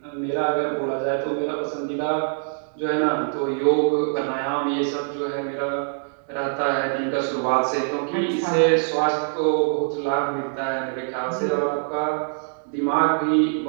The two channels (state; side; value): silent; left; digital silence